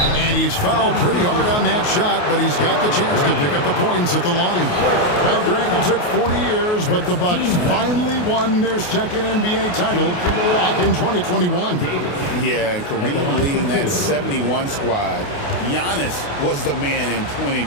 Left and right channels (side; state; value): right; late; 28 ms